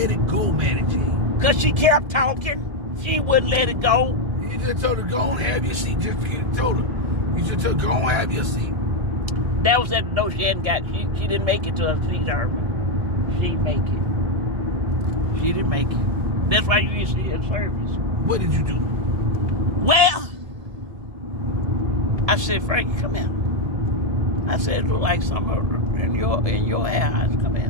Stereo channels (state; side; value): late; left; 1.7 ms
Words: it go, Manny G? Because she kept talking. She wouldn't let it go. You just told her, go and have your seat. You just told her, go and have your seat. That was at the door. She didn't make it to her seat, Herman. She didn't make it. She didn't make it. That's why you didn't see her service. What did you do? Well, I said, Frankie, come here. I said, it look like something in your eyes. Come here.